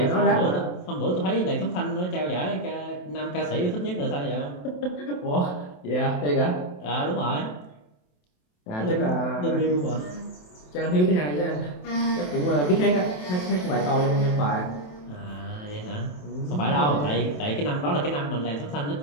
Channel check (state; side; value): late; right; 27 ms